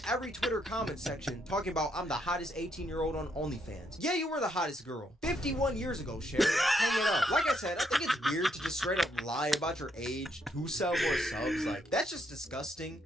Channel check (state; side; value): normal; both; correlation 0.75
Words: every Twitter comment section talking about I'm the hottest 18-year-old on OnlyFans. Yeah, you were the hottest girl 51 years ago, Sherry. Hang it up. Like I said, I think it's weird to just straight up lie about your age to sell more subs. Like, that's just disgusting.